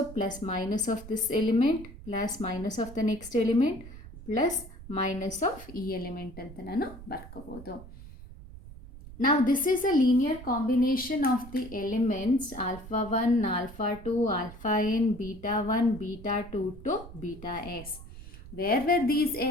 plus minus of this element plus minus of the next element plus minus of ಈ element ಅಂತ ನಾನು ಬರ್ಕೋಬೋದು. Now this is a linear combination of the elements alpha 1, alpha 2, alpha n, beta 1, beta 2 to beta s. Where were these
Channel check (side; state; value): right; noise; rumble, 16 dB below the sound